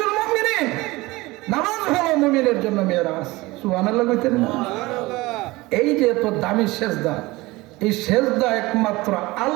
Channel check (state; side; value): quieter; left; 21.0 dB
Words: মুমিনিন, নামাজ হলো মুমিনের জন্য মিরাজ। সুবহানাল্লাহ কইতেন না? এই যে এত দামি সেজদা, এই সেজদা একমাত্র